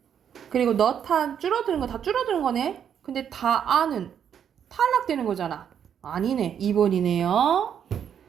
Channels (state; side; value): quieter; left; 8.5 dB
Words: 그리고 너탄 줄어드는 거 다 줄어드는 거네. 근데 다 아는 탈락되는 거잖아. 아니네. 2번이네요.